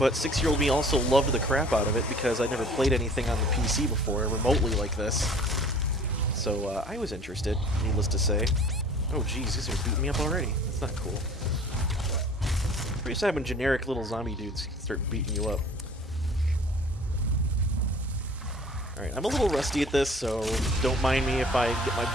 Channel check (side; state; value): both; normal; correlation 0.49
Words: 6-year-old me also loved the crap out of it because I'd never played anything on the PC before, remotely like this. So I was interested, needless to say. Oh jeez, these are beating me up already. That's not cool. Pretty sad when generic little zombie dudes start beating you up. Alright, I'm a little rusty at this, so don't mind me if I get my